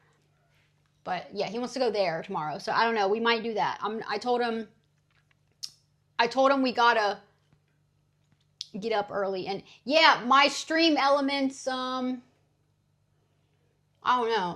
But yeah, he wants to go there tomorrow. So I don't know. We might do that. I told him we gotta get up early. And yeah, my stream elements. I don't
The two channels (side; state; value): both; identical; correlation 1.00